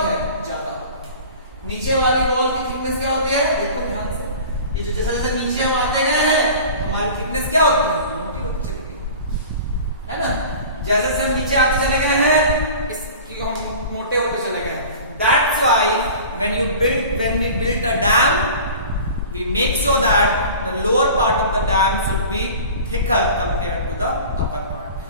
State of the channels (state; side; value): inverted; both; correlation -0.39